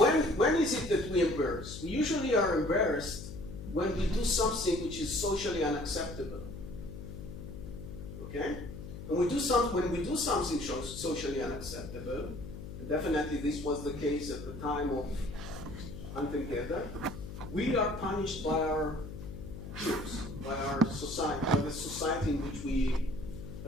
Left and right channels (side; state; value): left; noise; hum, 10 dB below the sound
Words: when is it that we embarrass? We usually are embarrassed when we do something which is socially unacceptable. Okay? And when we do something socially unacceptable, and definitely this was the case at the time of Hunter-Gatherer, we are punished by our peers, by our society, by the society in which we